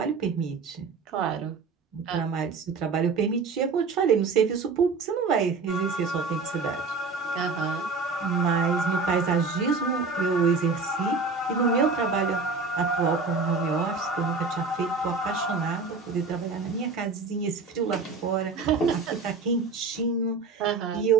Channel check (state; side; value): quieter; left; 4.3 dB